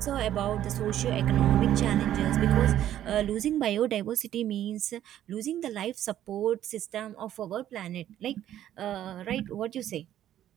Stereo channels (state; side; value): quieter; left; 11.8 dB